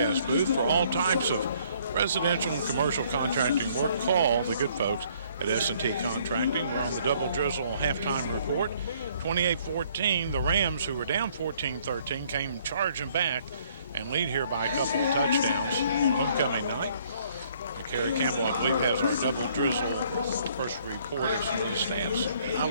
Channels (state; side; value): inverted; both; correlation -0.63